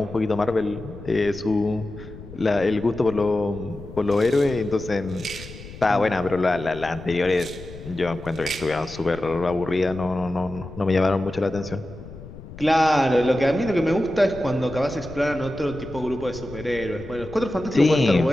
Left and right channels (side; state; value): left; noise; rumble, 15 dB below the sound